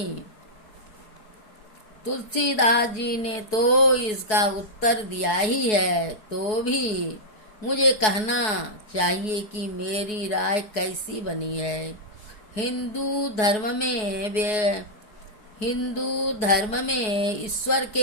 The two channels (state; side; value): late; right; 4.7 ms